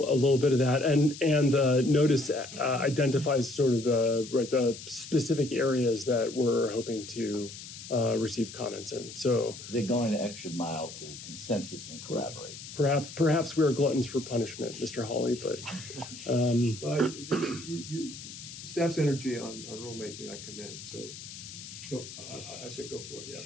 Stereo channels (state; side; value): noise; left; hiss, 13 dB below the sound